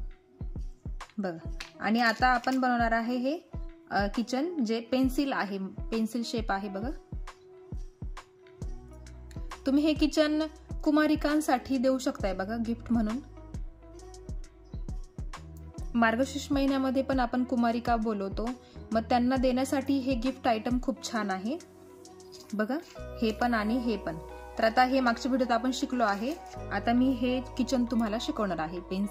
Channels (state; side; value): identical; both; correlation 1.00